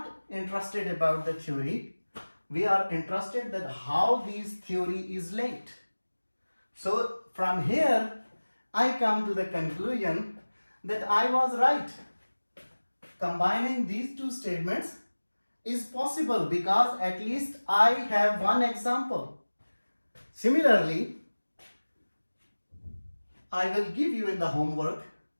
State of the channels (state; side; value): inverted; both; correlation -1.00